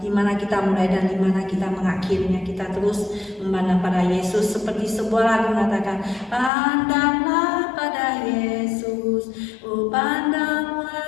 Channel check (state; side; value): drops out; right; at 6.5 s